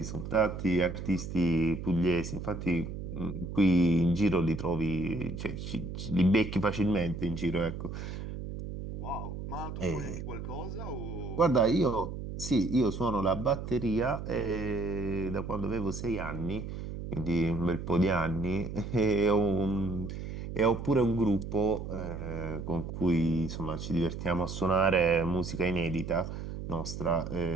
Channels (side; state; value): right; noise; hum, 7 dB below the sound